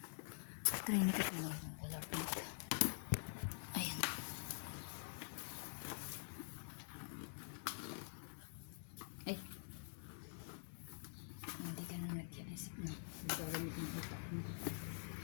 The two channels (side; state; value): right; silent; digital silence